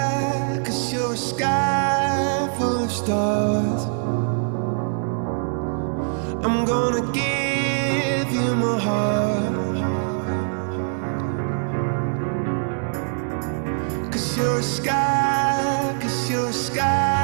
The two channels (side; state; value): left; silent; digital silence